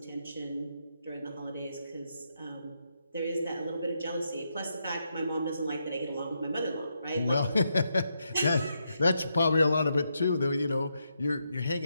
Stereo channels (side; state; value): both; inverted; correlation -0.82